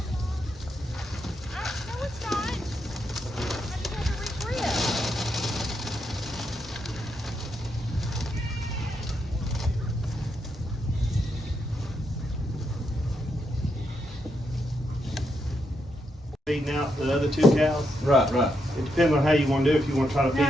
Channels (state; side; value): normal; both; correlation 0.81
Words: Feeding out the other 2 cows. Right. It depends on how you want to do it. If you want to try to feed